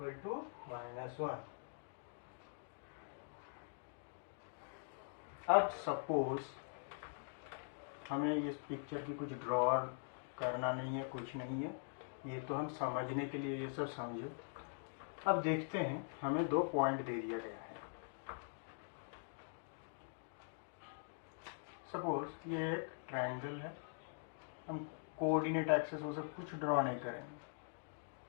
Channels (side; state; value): right; silent; digital silence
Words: to -1। अब सपोज हमें इस पिक्चर की कुछ ड्रॉ करना नहीं है, कुछ नहीं है, ये तो हम समझने के लिए ये सब समझे। अब देखते हैं, हमें दो पॉइंट दे दिया गया है। सपोज ये एक ट्रायंगल है, हम कोऑर्डिनेट एक्सिस वो सब कुछ ड्रॉ नहीं करेंगे,